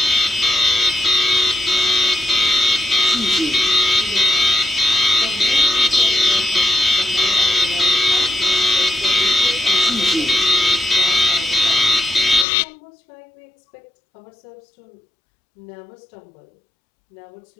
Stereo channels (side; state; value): right; drops out; at 12.5 s